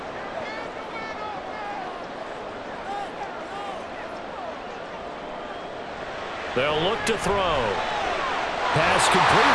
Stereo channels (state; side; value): identical; both; correlation 1.00